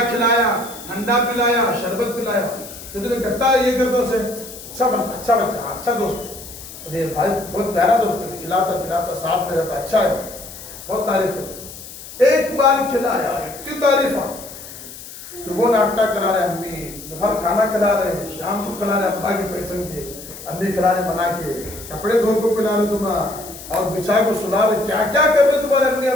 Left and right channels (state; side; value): noise; left; hiss, 14 dB below the sound